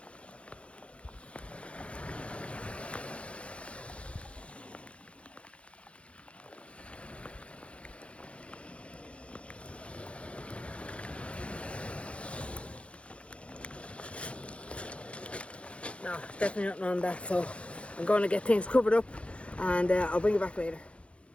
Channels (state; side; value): late; right; 0.061 ms